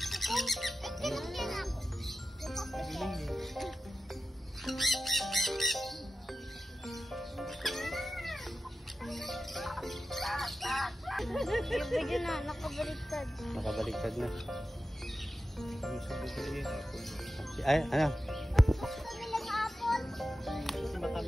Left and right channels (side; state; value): both; normal; correlation 0.93